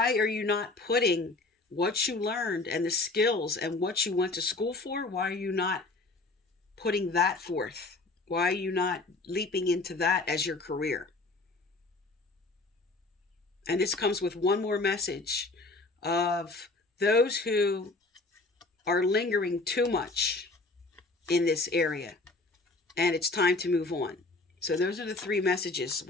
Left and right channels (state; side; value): quieter; right; 3.2 dB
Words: are you not putting what you learned and the skills and what you went to school for? Why are you not putting that forth? Why are you not leaping into that as your career? And this comes with one more message of those who are lingering too much in this area. And it's time to move on. So those are the three messages